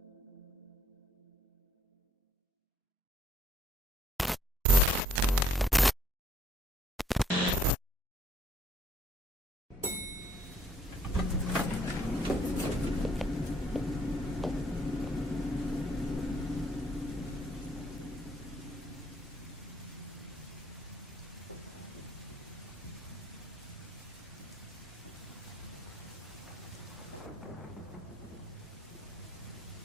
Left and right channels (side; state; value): both; normal; correlation 0.66